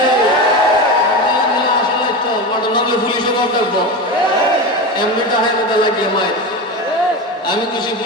আসলে তো নামলে পুলিশে বাপ ডাকবো, এমনিটা হয় না লাগিয়ে মায়ের। আমি খুশি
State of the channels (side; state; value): both; normal; correlation 0.22